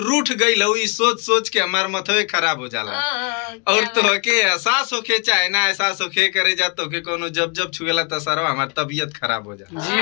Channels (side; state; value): right; quieter; 36.0 dB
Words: गई लहुई सोच सोच के हमार मथवे खराब हो जाला। और तो के एहसास होके चाहे ना एहसास होके करे जा तो के कोनो जब जब छुएला तो सारा हमार तबीयत खराब हो जाला। जी